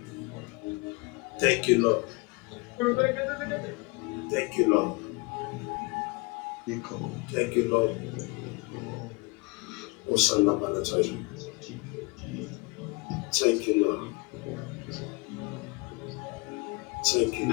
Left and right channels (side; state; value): right; quieter; 27.8 dB